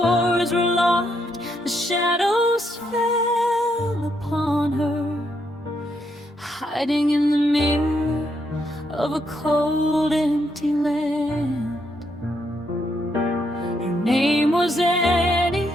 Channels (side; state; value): both; normal; correlation 0.77